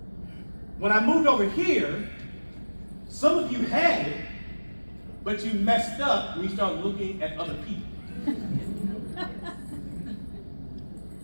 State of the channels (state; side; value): inverted; both; correlation -1.00